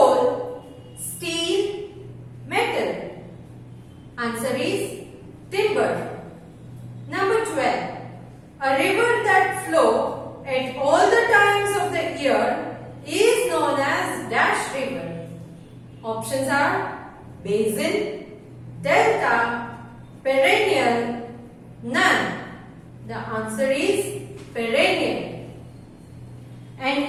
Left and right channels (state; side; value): identical; both; correlation 1.00